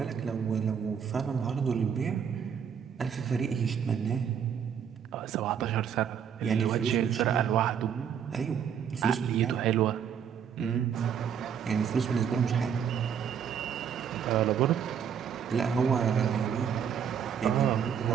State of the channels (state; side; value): quieter; left; 7.9 dB